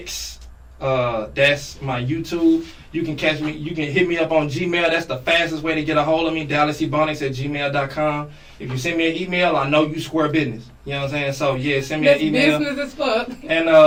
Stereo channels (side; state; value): both; identical; correlation 1.00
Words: That's my YouTube. You can catch me. You can hit me up on Gmail. That's the fastest way to get a hold of me. DallasEbonix@gmail.com. If you send me an email, I know you square business. You know what I'm saying? So yeah, send me an email. Business as fuck. And